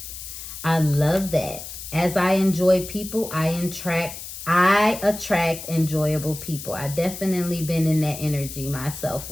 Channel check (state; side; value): noise; left; hiss, 11 dB below the sound